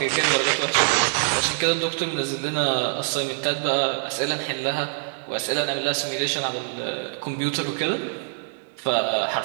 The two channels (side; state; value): left; silent; digital silence